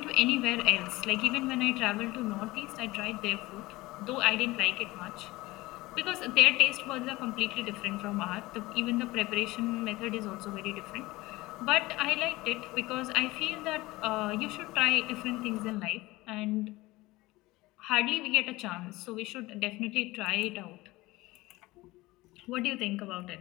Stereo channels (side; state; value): right; quieter; 19.9 dB